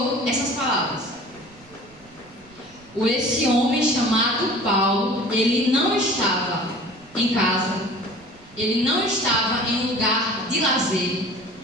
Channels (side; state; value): right; noise; rumble, 26 dB below the sound